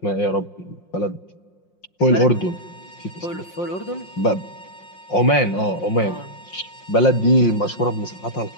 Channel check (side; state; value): right; late; 5.6 ms